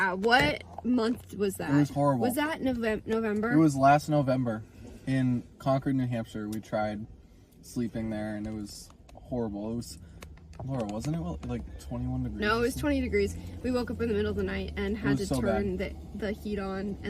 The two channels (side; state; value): both; identical; correlation 1.00